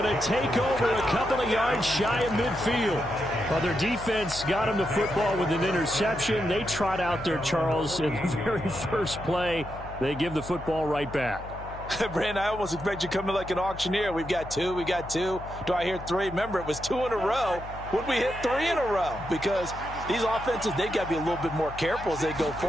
to take over a couple of yards shy of midfield. Well, their defense got them the football with an interception. They trot out there, Charles, in the very first play. They give the football right back. Brandon, I almost expect you to come in like an auctioneer. We've got two. Do I hear three? Remember, it was 2 in a row. Would we hit 3 in a row? Because these offenses, they've got to be a little bit more careful as they go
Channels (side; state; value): left; noise; hum, 13 dB below the sound